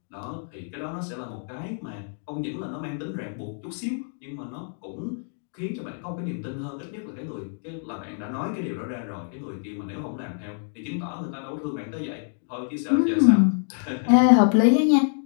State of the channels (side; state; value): right; silent; 61 dB below the other